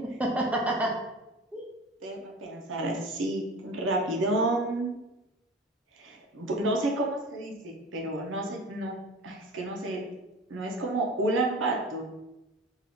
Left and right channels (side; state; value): both; normal; correlation 0.36